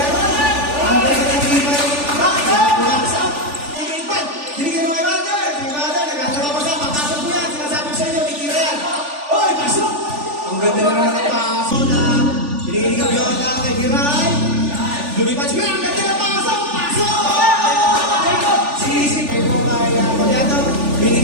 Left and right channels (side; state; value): left; late; 3.4 ms